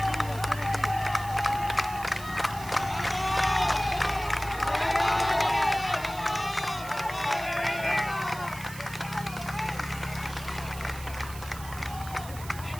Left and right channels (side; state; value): right; noise; hiss, 15 dB below the sound